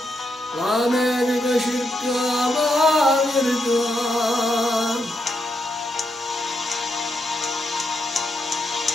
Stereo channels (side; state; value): both; normal; correlation 0.82